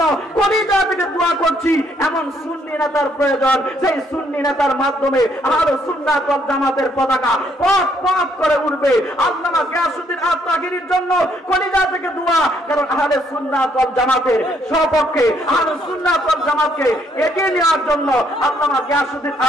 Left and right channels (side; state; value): both; normal; correlation 0.69